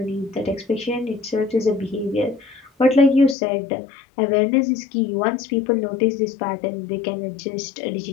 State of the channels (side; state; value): right; drops out; at 3.4 s